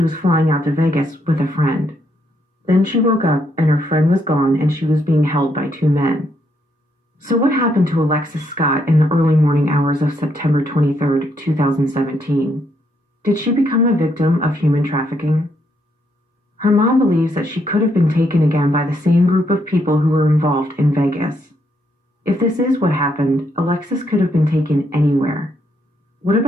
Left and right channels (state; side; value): normal; both; correlation 0.75